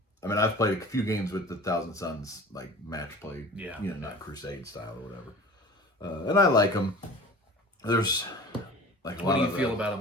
I mean, I've played a few games with the Thousand Suns, like match play, not Crusade style or whatever. And I like them. There's like a what lot do you feel about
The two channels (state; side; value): normal; both; correlation 0.40